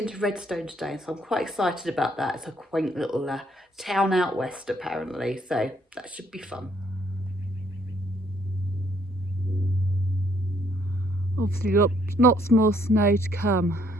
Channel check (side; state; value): both; normal; correlation 0.67